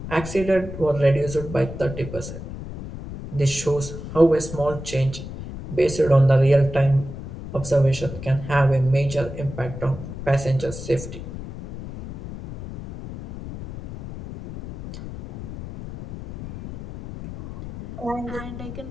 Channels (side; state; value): left; noise; rumble, 10 dB below the sound